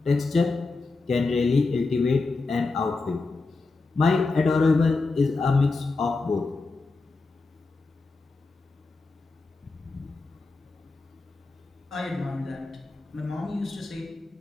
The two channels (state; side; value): quieter; right; 3.7 dB